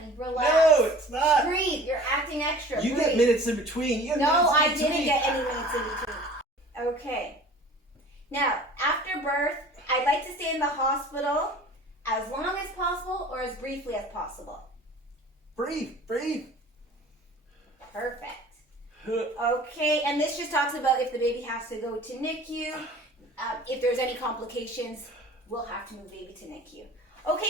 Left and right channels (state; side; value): normal; both; correlation 0.45